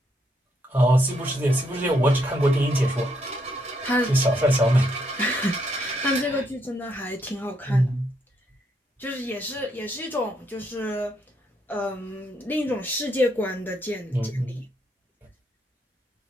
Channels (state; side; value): normal; both; correlation 0.75